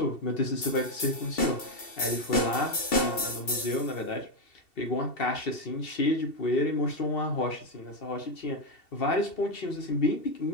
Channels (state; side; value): late; right; 2.7 ms